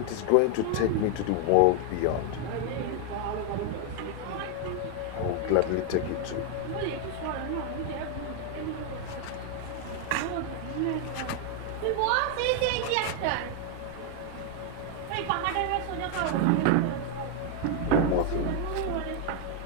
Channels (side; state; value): both; different; correlation 0.01